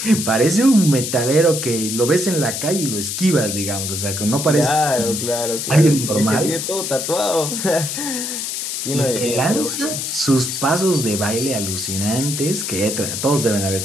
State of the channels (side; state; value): left; noise; hiss, 4 dB below the sound